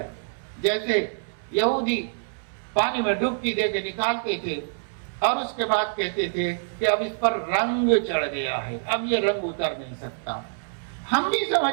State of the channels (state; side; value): silent; left; 61 dB below the other